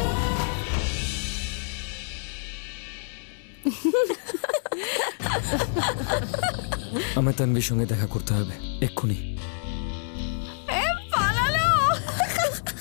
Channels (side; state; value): right; silent; digital silence